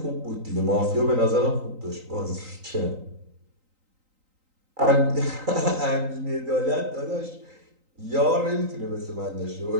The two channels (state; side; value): late; left; 3.9 ms